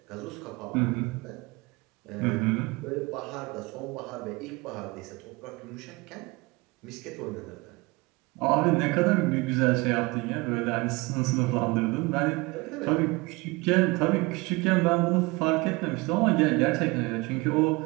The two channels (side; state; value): left; quieter; 24.3 dB